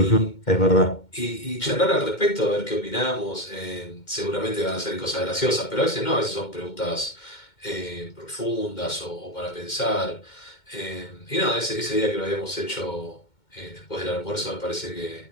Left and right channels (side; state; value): right; late; 2.2 ms